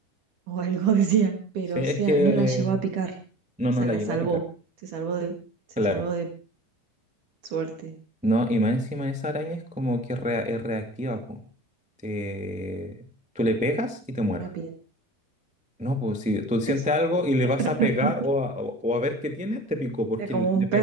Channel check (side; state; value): both; normal; correlation 0.41